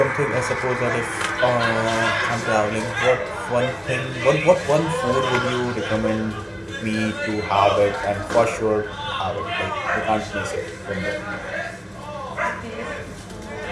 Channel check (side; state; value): both; identical; correlation 1.00